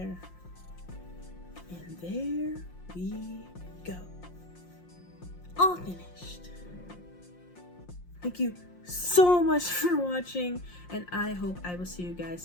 And there we go. All finished. Thank you so much for watching, and I hope I will see you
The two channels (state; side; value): late; right; 5.6 ms